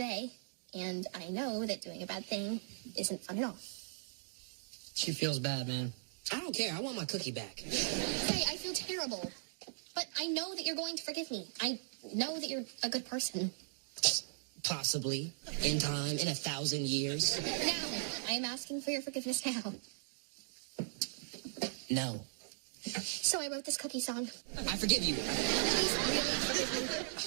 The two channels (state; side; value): silent; left; digital silence